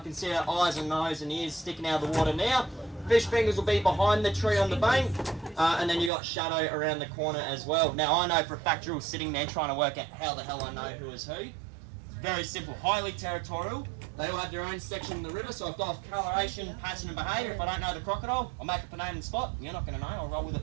see her eyes and nose and ears sticking out of the water now. Fish fingers will be behind the tree on the bank. And then you got Shadow around the corner as well. Now I know for a fact Drill's sitting there trying to work out how the hell I know who is who. Very simple, highly territorial. They all have their own section in the river, so I've got coloration, pattern and behaviour. If I don't know the crocodile, I'll make up a name and spot. You're not going to know, I'll roll with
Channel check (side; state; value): left; drops out; at 6.1 s